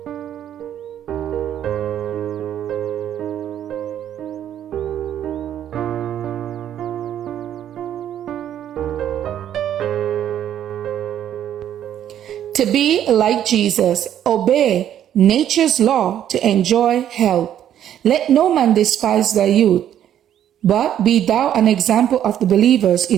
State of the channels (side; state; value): left; quieter; 10.5 dB